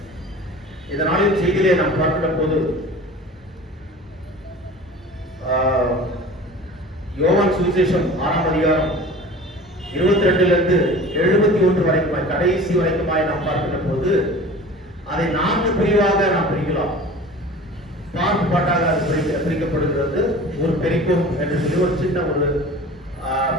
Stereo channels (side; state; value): both; normal; correlation 0.40